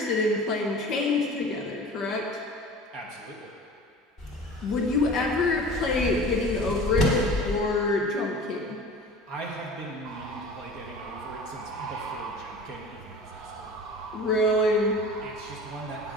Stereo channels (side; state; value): both; normal; correlation 0.39